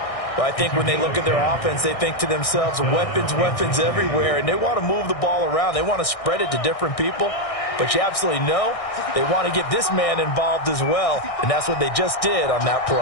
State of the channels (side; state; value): right; late; 1.6 ms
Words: Well, I think when they look at their offense, they think to themselves, weapons, weapons everywhere, and they want to move the ball around. They want to spread it to different people. But you absolutely know they want to get this man involved as well, and that's what they just did on that